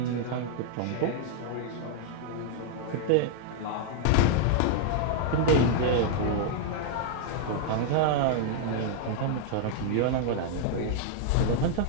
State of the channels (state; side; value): different; both; correlation 0.00